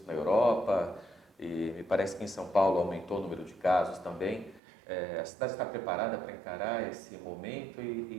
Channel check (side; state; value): left; drops out; at 4.6 s